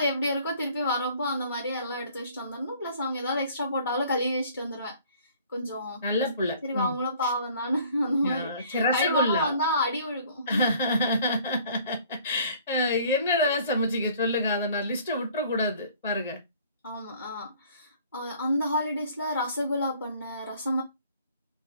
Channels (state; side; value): inverted; both; correlation -0.54